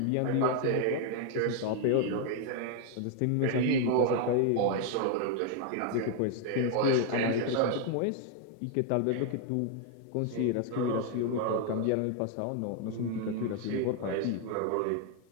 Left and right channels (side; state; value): both; different; correlation 0.00